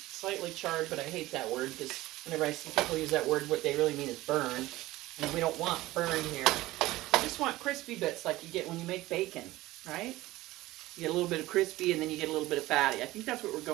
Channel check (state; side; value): quieter; left; 17.7 dB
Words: slightly charred, but I hate that word because whenever I see people use that word, what they really mean is burn. And we don't want burn here. We just want crispy bits like you get when you make bacon, right? You get a little bit of crispy and then you get a little bit of fatty. I think that's what we're